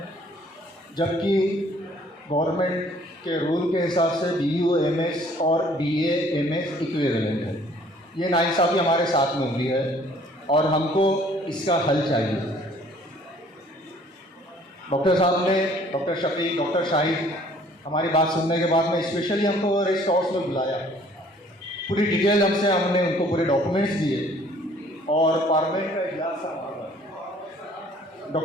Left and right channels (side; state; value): both; normal; correlation 0.57